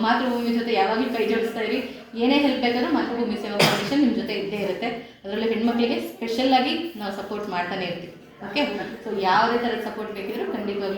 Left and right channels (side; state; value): both; identical; correlation 1.00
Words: ಮಾತೃಭೂಮಿ ಜೊತೆ ಯಾವಾಗಲೂ ಕೈ ಜೋಡಿಸ್ತಾ ಇರಿ. ಏನೇ ಹೆಲ್ಪ್ ಬೇಕಾದ್ರೂ ಮಾತೃಭೂಮಿ ಸೇವಾ ಫೌಂಡೇಶನ್ ನಿಮ್ಮ ಜೊತೆ ಇದ್ದೇ ಇರುತ್ತೆ. ಅದರಲ್ಲೂ ಹೆಣ್ಮಕ್ಳಿಗೆ ಸ್ಪೆಷಲ್ಲಾಗಿ ನಾವು ಸಪೋರ್ಟ್ ಮಾಡ್ತಾನೆ ಇರ್ತೀವಿ. ಓಕೆ? ಸೊ ಯಾವುದೇ ಥರದ ಸಪೋರ್ಟ್ ಬೇಕಿದ್ರು